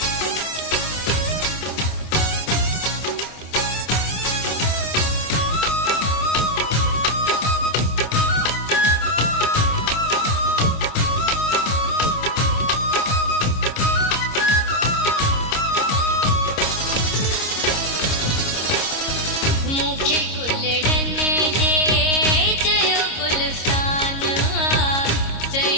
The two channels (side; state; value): right; late; 26 ms